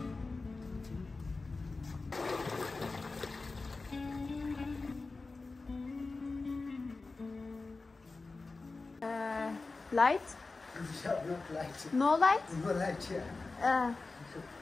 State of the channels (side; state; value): right; quieter; 3.7 dB